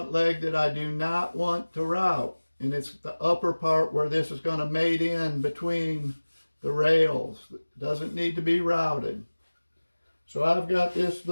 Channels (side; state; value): both; inverted; correlation -1.00